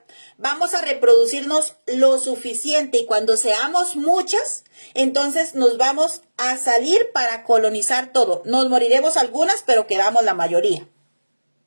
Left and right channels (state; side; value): inverted; both; correlation -1.00